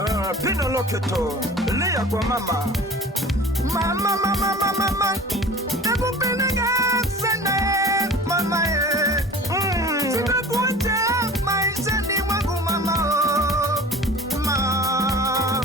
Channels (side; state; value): both; normal; correlation 0.41